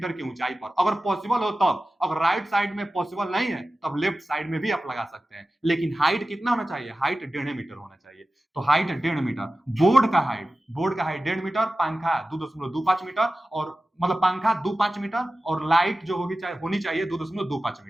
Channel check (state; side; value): normal; both; correlation 0.95